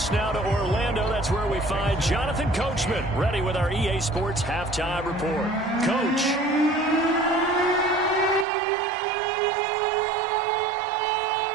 now to Orlando, that's where we find Jonathan Coachman, ready with our EA Sports Halftime Report. Coach.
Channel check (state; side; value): drops out; left; at 8.5 s